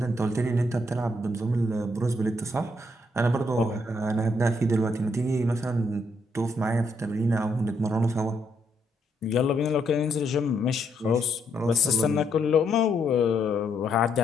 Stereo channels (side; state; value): both; normal; correlation 0.75